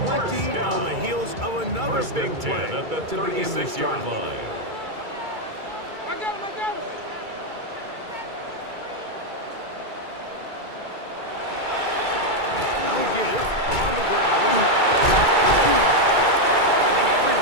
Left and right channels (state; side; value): late; left; 2.3 ms